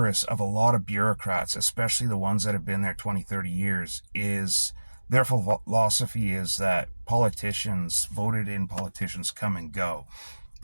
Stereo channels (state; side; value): inverted; both; correlation -1.00